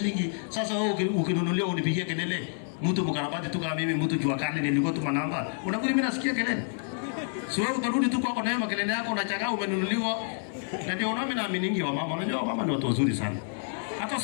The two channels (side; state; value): right; silent; 59 dB below the other